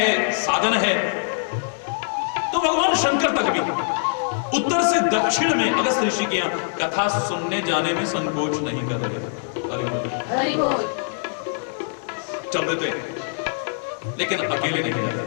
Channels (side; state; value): right; silent; digital silence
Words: साधन है, तो भगवान शंकर तक भी उत्तर से दक्षिण में अगस्त ऋषि के यहां कथा सुनने जाने में संकोच नहीं कर रहे। हरि बोल। चल देते हैं, लेकिन अकेले नहीं जाते।